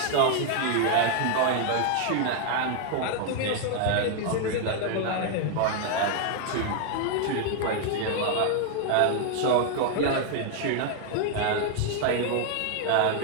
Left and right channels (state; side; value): different; both; correlation 0.00